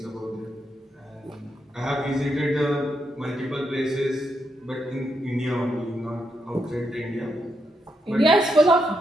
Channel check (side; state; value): both; normal; correlation 0.81